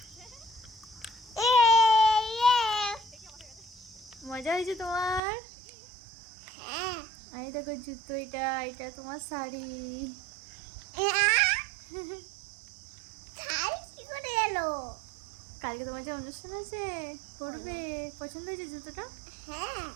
মজা হয়েছে তোমার? এই দেখো জুতো, এটা এটা তোমার শাড়ি। কি করে এলো? কালকে তোমার যে অনুষ্ঠান আছে, পরবে। পছন্দ হয়েছে জুতোটা? হ্যাঁ।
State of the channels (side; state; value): left; drops out; at 5.2 s